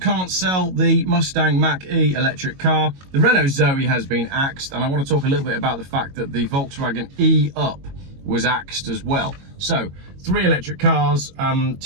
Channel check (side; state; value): left; late; 22 ms